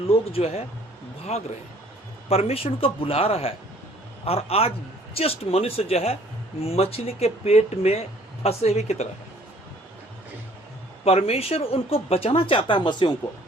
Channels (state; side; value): normal; both; correlation 0.58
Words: जो है भाग रहे हैं। परमेश्वर उनको बुला रहा है और आज जस्ट मनुष्य जो है मछली के पेट में फंसे हुए की तरह है। परमेश्वर उनको बचाना चाहता है, मसीहों को